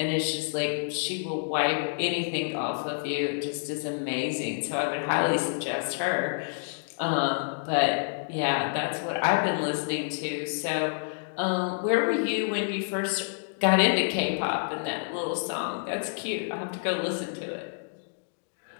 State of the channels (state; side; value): silent; right; digital silence